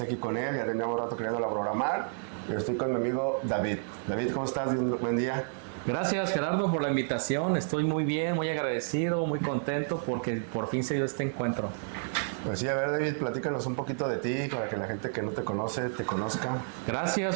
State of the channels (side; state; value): left; silent; digital silence